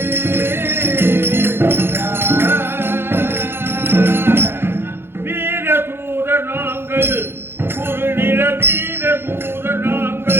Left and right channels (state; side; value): late; left; 0.11 ms